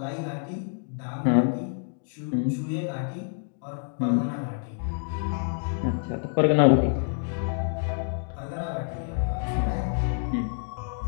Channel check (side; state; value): right; silent; 60 dB below the other